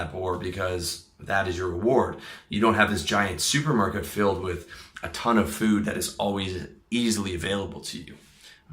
boar because that is your reward. You don't have this giant supermarket filled with a ton of food that is always easily available to you,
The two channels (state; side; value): identical; both; correlation 1.00